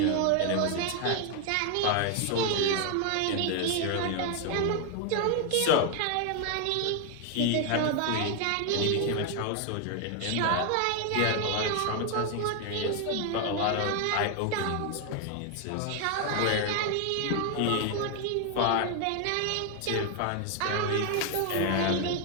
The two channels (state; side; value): different; both; correlation 0.01